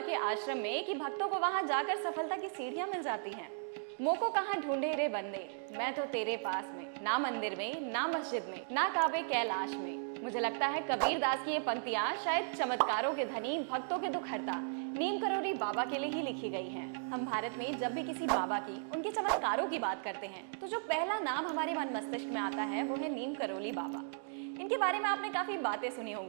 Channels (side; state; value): left; silent; digital silence